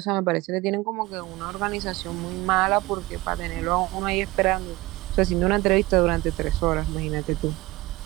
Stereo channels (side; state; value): left; quieter; 20.2 dB